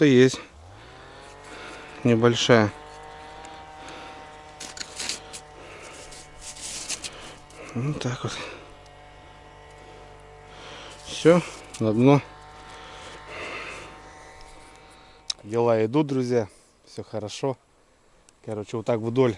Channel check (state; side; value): identical; both; correlation 1.00